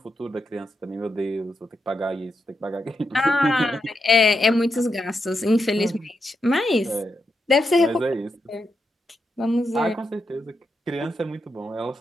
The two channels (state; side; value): normal; both; correlation 0.84